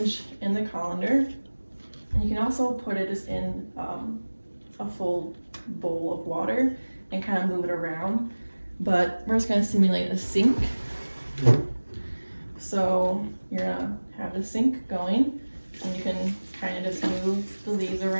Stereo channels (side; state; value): both; inverted; correlation -1.00